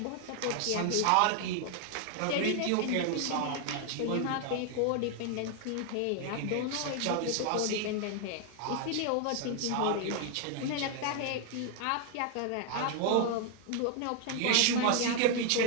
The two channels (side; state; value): both; different; correlation 0.00